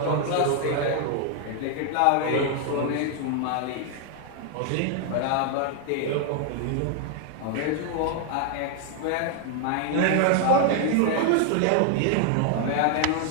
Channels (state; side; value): different; both; correlation 0.00